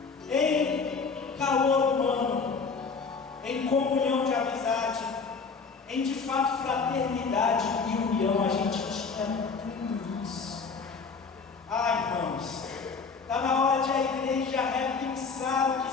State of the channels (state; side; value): quieter; right; 4.9 dB